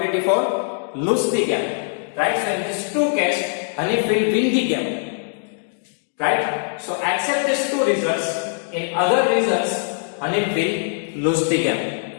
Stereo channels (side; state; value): right; silent; digital silence